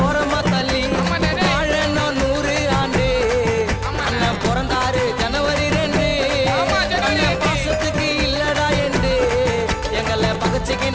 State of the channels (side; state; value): both; identical; correlation 1.00